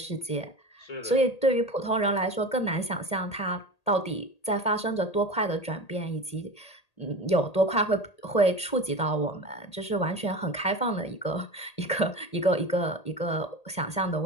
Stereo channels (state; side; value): late; right; 1.8 ms